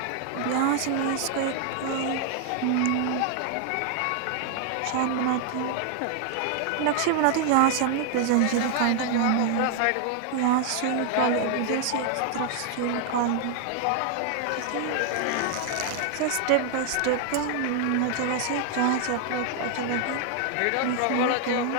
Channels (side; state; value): both; different; correlation 0.00